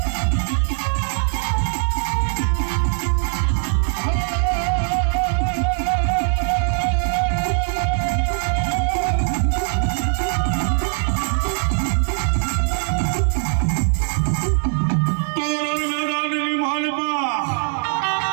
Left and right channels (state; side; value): silent; left; 65 dB below the other